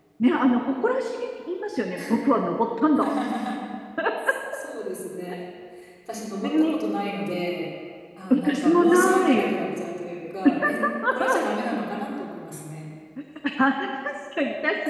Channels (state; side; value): identical; both; correlation 1.00